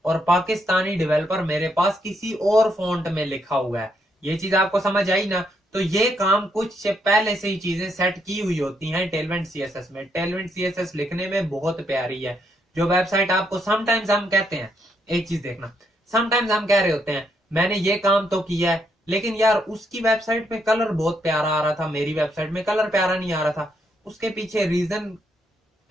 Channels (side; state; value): both; normal; correlation 0.76